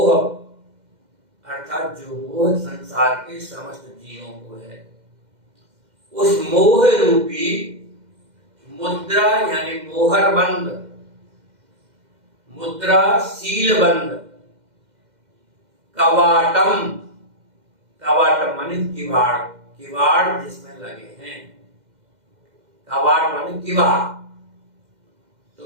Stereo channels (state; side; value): late; left; 2.1 ms